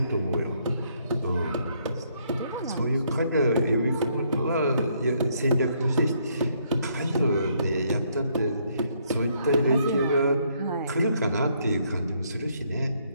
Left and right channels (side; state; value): both; inverted; correlation -0.70